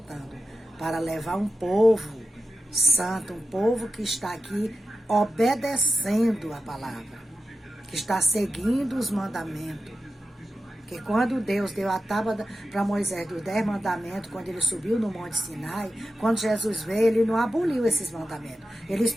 para levar um povo santo, um povo que está aqui obedecendo a palavra, que está seguindo os mandamentos. Que quando Deus deu a tábua para Moisés dos 10 mandamentos, quando ele subiu no Monte Sinai, quando Jesus veio, ele não aboliu esses mandamentos. Eles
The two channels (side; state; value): both; normal; correlation 0.91